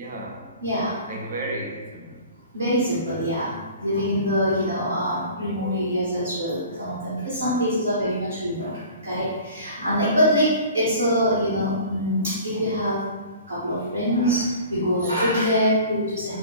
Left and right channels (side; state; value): both; inverted; correlation -0.43